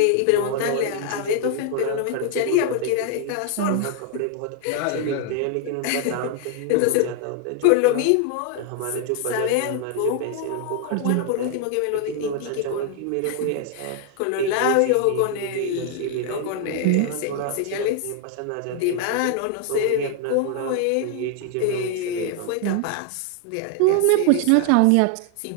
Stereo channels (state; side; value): different; both; correlation 0.00